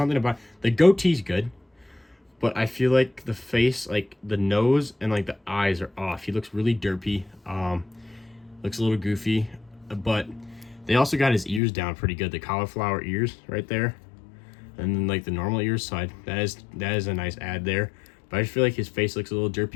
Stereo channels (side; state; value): right; drops out; at 11.6 s